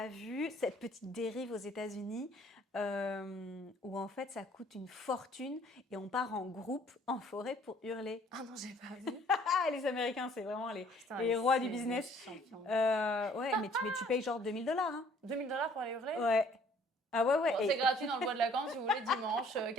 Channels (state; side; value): normal; both; correlation 0.58